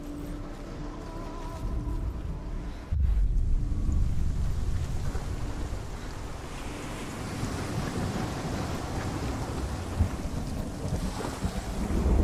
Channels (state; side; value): identical; both; correlation 1.00